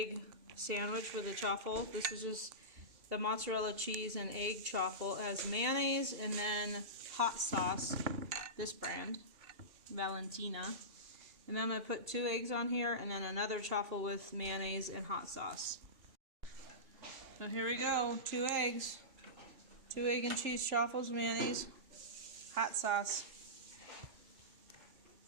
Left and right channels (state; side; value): late; left; 2.8 ms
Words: sandwich with a chaffle. This is just the mozzarella cheese and egg chaffle. It has mayonnaise and then hot sauce, this brand, Valentina. And then I'm going to put 2 eggs on here and then another chaffle with mayonnaise and hot sauce. So here we go, 2 eggs. 2 egg and cheese chaffles, mayonnaise, hot sauce.